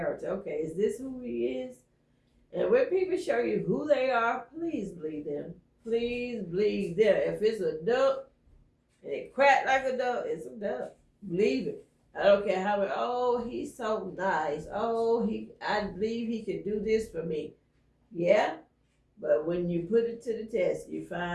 Okay, is this who he is? And when people show you who they are, please believe them. Please believe them. If it's a duck and it crack like a dove, it's a dove. Believe it. I don't care how. Oh, he's so nice. Oh, I believe he can do this for me. Yeah, but when you put it to the test, you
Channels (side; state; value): both; identical; correlation 1.00